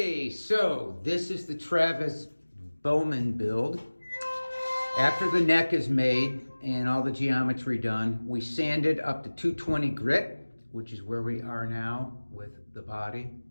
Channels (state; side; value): inverted; both; correlation -1.00